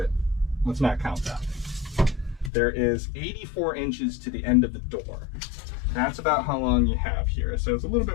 let's not count that. There is 84 inches to the end of the door. That's about how long you have here. So it's a little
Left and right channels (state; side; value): drops out; right; at 2.5 s